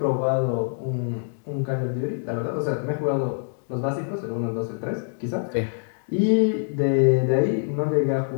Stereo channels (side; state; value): right; silent; 62 dB below the other